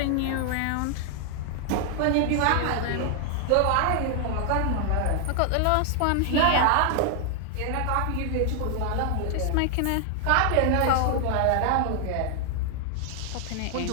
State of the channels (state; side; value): different; both; correlation 0.00